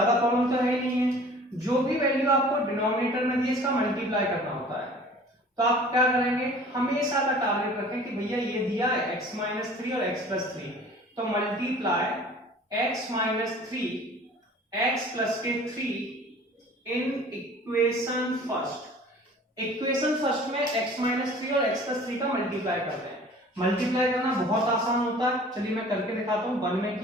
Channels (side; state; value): both; normal; correlation 0.47